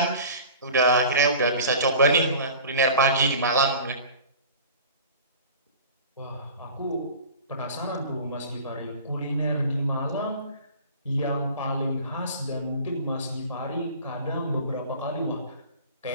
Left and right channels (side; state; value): both; inverted; correlation -0.40